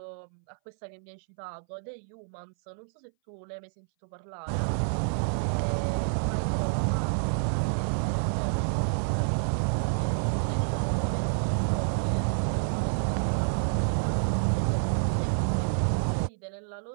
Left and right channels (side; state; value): left; silent; 59 dB below the other